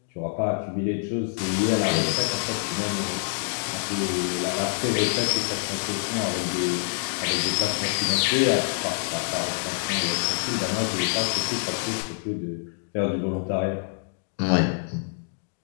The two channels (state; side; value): silent; right; digital silence